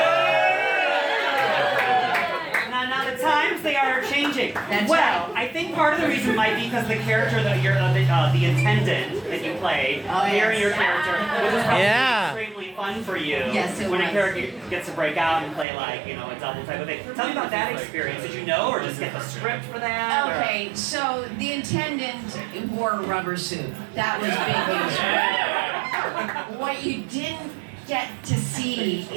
Now the times they are changing. That's well, right. I think part of the reason might be because the character that you're the intendant that you played, hearing your character, which is probably extremely fun for you. Yes, it when was. a character gets to break out and play like, a double type of thing. Tell me about that experience. Did you know or just get the script for that? Okay, so the intendant wore a rubber suit. That was big news. What you didn't get to see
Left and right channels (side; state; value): left; drops out; at 15.7 s